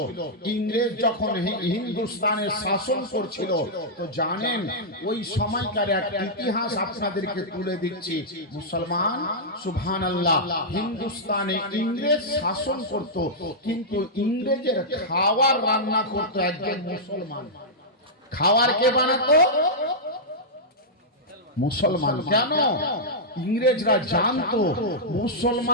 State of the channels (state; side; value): normal; both; correlation -0.10